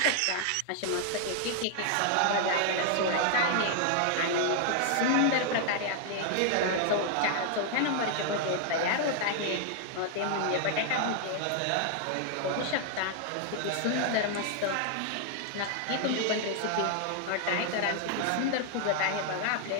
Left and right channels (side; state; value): both; different; correlation 0.00